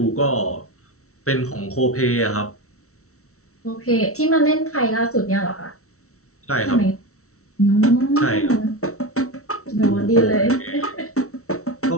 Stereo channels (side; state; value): right; late; 0.64 ms